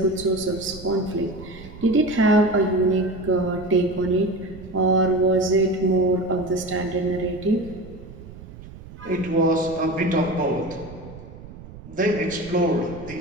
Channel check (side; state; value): right; noise; rumble, 16 dB below the sound